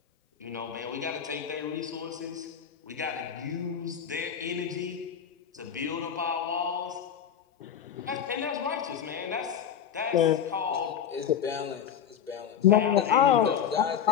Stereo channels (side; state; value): right; quieter; 8.6 dB